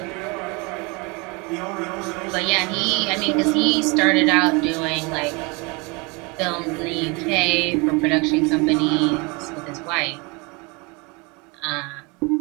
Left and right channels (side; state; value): left; quieter; 28.5 dB